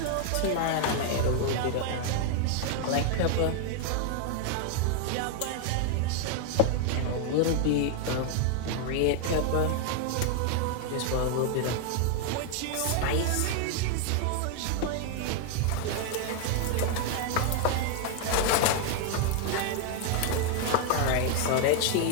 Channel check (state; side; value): different; both; correlation 0.00